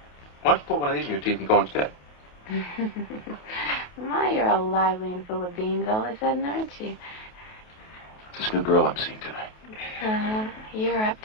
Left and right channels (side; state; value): right; late; 28 ms